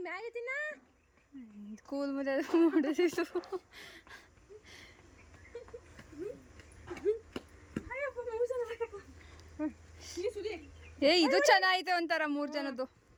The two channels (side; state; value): both; identical; correlation 1.00